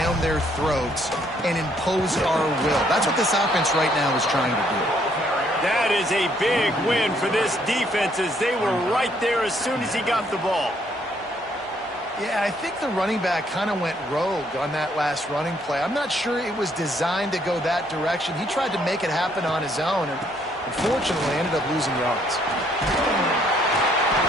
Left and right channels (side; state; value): both; normal; correlation 0.68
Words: their throats and impose our will? That's what this offense right now is trying to do. That is a big win for this defense as they were right there as soon as he got the ball. Yeah, I think the running back kind of went rogue on that last running play. I'm not sure it was designed to go that direction. He tried to make it happen on his own, and unfortunately ended up losing yards.